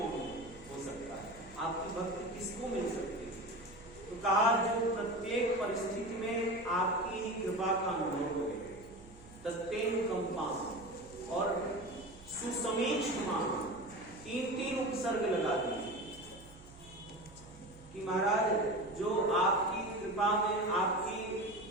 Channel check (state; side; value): noise; right; hum, 20 dB below the sound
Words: हो सकता है, आपकी भक्ति किसको मिल सकती है? तो कहा जो प्रत्येक परिस्थिति में आपकी ही कृपा का अनुभव करे, तत्तेनुकंपां और सुसमीक्षमाण, 3 उपसर्ग लगा दिए कि महाराज जो आपकी कृपा में आपकी